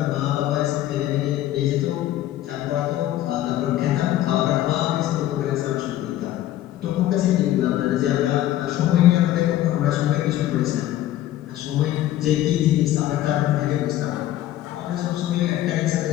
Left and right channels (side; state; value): right; quieter; 13.5 dB